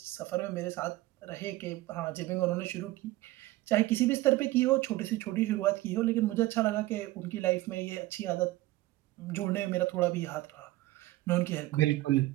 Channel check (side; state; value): left; quieter; 18.1 dB